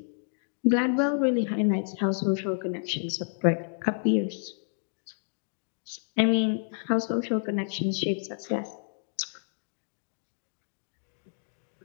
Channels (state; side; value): silent; right; digital silence